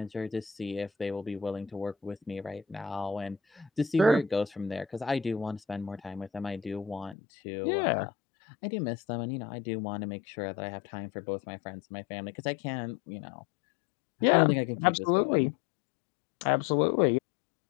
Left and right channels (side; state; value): right; drops out; at 7.2 s